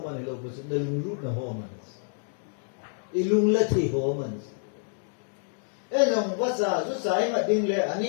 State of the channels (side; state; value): right; silent; digital silence